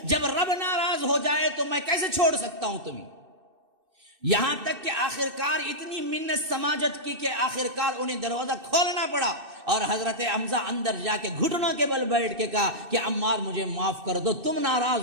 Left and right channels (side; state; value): left; late; 2.6 ms